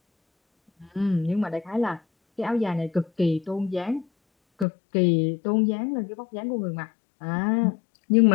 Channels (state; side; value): drops out; right; at 4.7 s